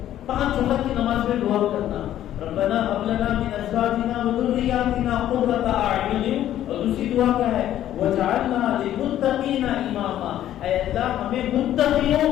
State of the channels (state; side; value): quieter; right; 12.1 dB